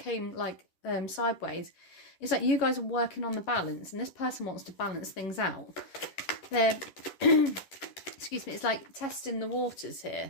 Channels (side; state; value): right; late; 10 ms